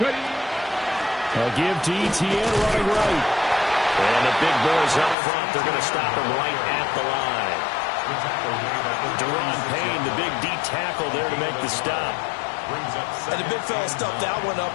give to Etienne running right. And the big boys up front. They're going to stop him right at the line. Deron Payne, the big D tackle there to make the stop. And the big fella stuffed that one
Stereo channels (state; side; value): drops out; right; at 5.2 s